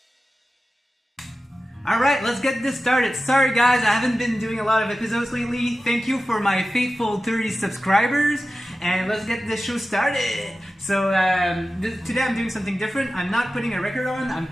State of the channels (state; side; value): normal; both; correlation 0.94